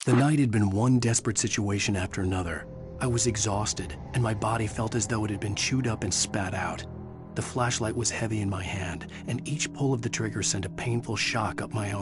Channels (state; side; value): identical; both; correlation 1.00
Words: The night had been one desperate situation after another. I was exhausted, and my body felt as though it had been chewed up and spat out. The flashlight was heavy in my hand, and each pull of the trigger sent a painful shock up my